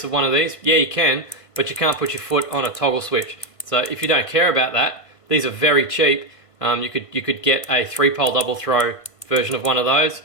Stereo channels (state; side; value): late; right; 1.5 ms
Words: of one of these? Yeah, you can, but you can't put your foot on a toggle switch. So if you don't care about that, these are very cheap. You could get a 3-pole double throw version of one of those.